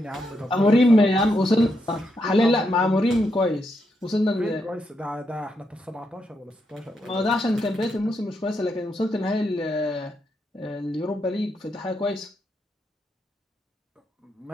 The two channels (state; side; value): normal; both; correlation 0.81